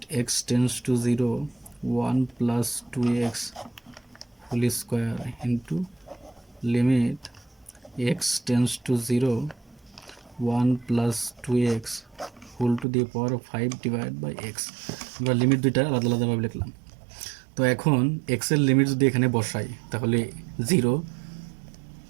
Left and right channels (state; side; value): drops out; left; at 12.9 s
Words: x tends to 0 1 plus 2x whole square into limit x tends to 0 1 plus 2x whole to the power 5 divide by x. আমরা লিমিট দুইটা আলাদা আলাদাভাবে লিখলাম। তো এখন এক্সের লিমিট যদি এখানে বসাই তাহলে 0